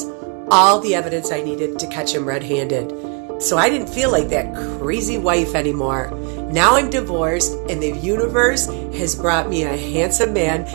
All the evidence I needed to catch him red-handed. So I didn't feel like that crazy wife anymore. Now I'm divorced, and the universe has brought me a handsome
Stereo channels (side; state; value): left; quieter; 35.9 dB